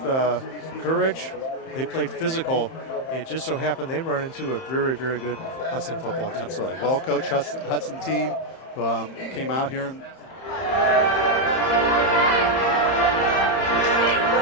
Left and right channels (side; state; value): right; late; 31 ms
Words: courage. They played physical. It just so happened they run into a very, very good Hudson football team. Absolutely. Well-coached Hudson team came out here and